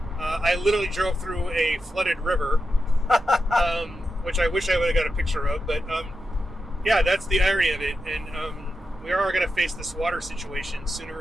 I literally drove through a flooded river, which I wish I would have got a picture of. But yeah, that's the irony of it, and we are going to face this water situation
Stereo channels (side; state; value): both; normal; correlation 0.89